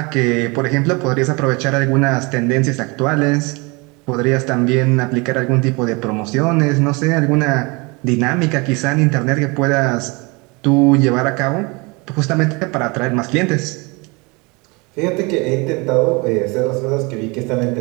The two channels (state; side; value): quieter; left; 27.6 dB